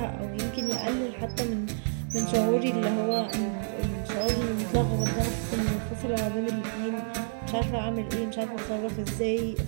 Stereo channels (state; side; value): silent; left; digital silence